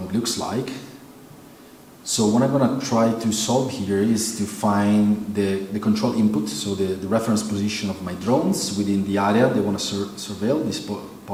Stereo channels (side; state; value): both; identical; correlation 1.00